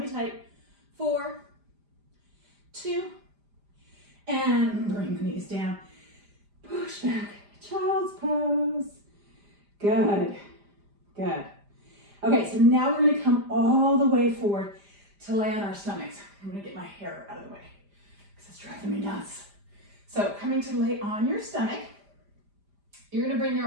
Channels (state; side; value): late; left; 5.0 ms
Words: tight. 4, 2. And bring the knees down. Push back. Child's pose. Good. Good. Okay, so now we're going to come all the way forward to lay on our stomachs. I'm gonna get my hair out of the way because it's driving me nuts. So coming to lay on your stomach, you're gonna bring